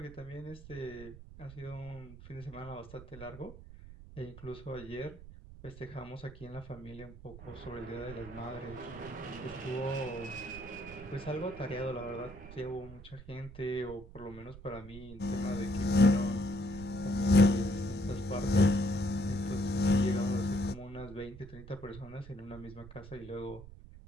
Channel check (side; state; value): right; noise; rumble, 16 dB below the sound